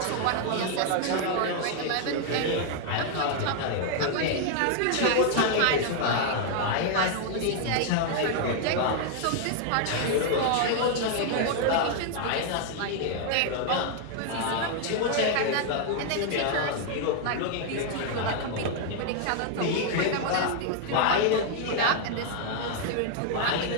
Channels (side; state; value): both; different; correlation 0.00